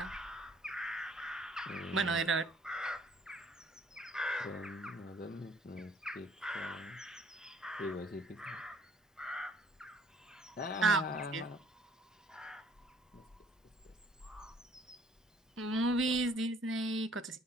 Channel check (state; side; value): normal; both; correlation 0.59